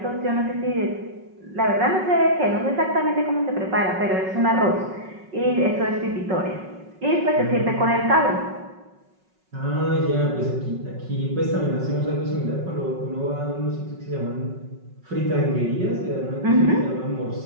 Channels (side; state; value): left; late; 5.4 ms